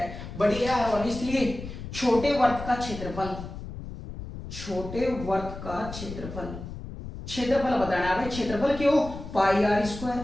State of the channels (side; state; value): left; noise; rumble, 10 dB below the sound